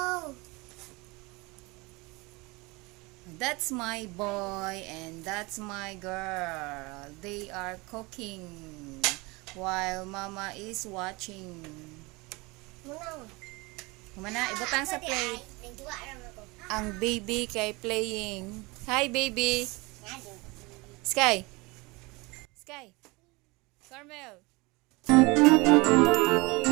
That's my boy and that's my girl. They are cooking while mama is watching. Muna. Kumana, ibutang sa plate. Ang baby kay playing. Hi, baby. Sky. Sky. Carmel.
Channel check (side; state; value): left; quieter; 25.0 dB